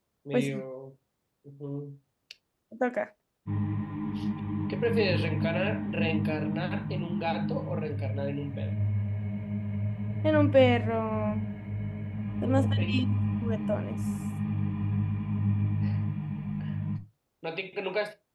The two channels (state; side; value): identical; both; correlation 1.00